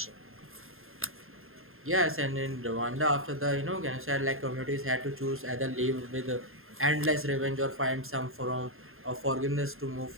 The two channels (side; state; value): left; late; 0.61 ms